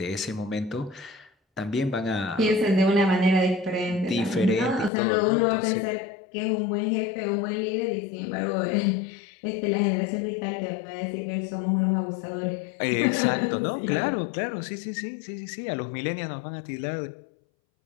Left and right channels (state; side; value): drops out; right; at 4.9 s